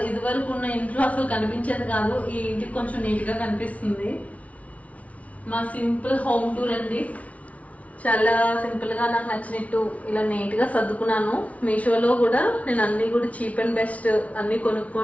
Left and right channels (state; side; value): late; right; 0.067 ms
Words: ఇదివరకు ఉన్న ఇంట్లో అసలు కనిపించేది కాదు. ఈ ఇంటికి కొంచెం నీట్ గా కనిపిస్తుంది. మా సింపుల్ హోమ్ టూర్ అండి. చాలా సింపుల్ గా నాకు నచ్చినట్టు ఇలా నీట్ గా సర్దుకున్నాను. మీషోలో కూడా నేను అన్ని కూడా చీప్ అండ్ బెస్ట్ అన్ని